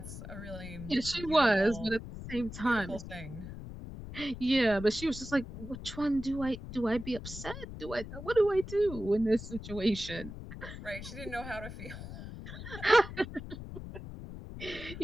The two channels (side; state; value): left; noise; rumble, 11 dB below the sound